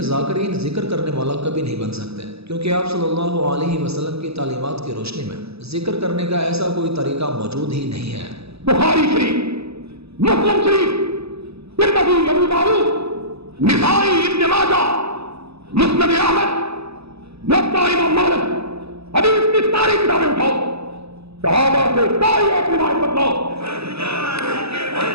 ذاکرین ذکر کرنے والا کبھی نہیں بن سکتے، کیونکہ آپ صلی اللہ علیہ وسلم کی تعلیمات کی روشنی میں ذکر کرنے کا ایسا کوئی طریقہ موجود ہی نہیں ہے۔ بخاری شریف، مسلم شریف، ترمذی، ابو داؤد، نسائی، ابن ماجہ، مسند احمد، موطا امام مالک، حدیث کی ساری کتابیں اٹھاؤ، صحابہ سے ساری ایک روایت بتلاؤ۔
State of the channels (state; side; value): late; left; 0.79 ms